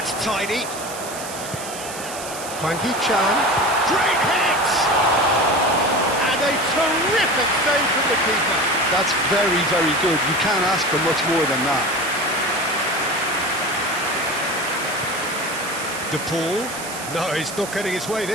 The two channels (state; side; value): noise; right; hiss, 10 dB below the sound